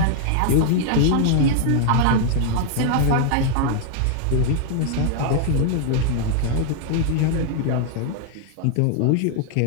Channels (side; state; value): both; different; correlation 0.00